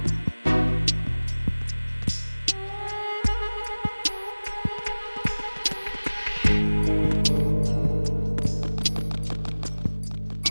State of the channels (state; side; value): inverted; both; correlation -1.00